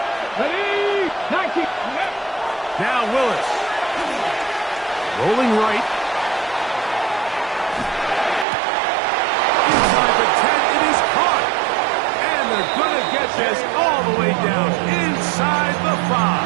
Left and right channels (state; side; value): drops out; left; at 8.5 s